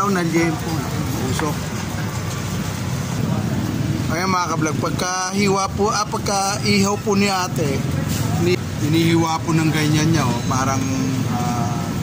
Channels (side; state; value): both; identical; correlation 1.00